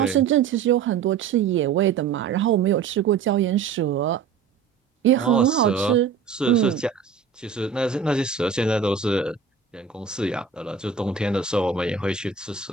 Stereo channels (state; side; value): quieter; left; 6.3 dB